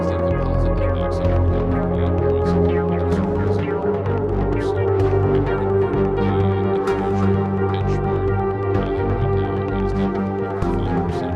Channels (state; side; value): identical; both; correlation 1.00